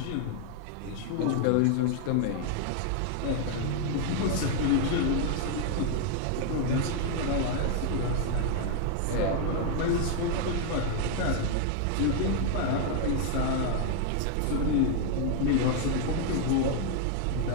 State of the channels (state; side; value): different; both; correlation 0.00